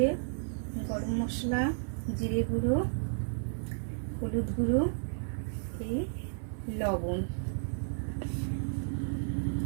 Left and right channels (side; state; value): left; silent; 56 dB below the other